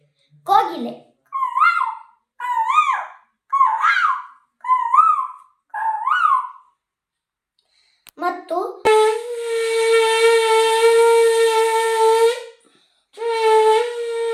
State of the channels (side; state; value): both; identical; correlation 1.00